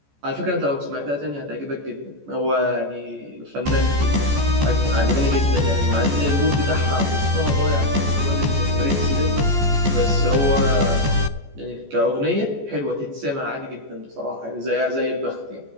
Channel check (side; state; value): left; late; 14 ms